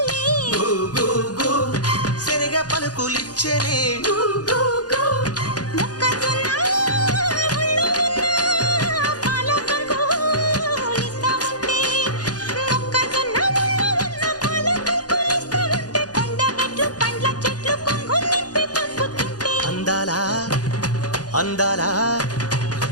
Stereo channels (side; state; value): right; late; 0.68 ms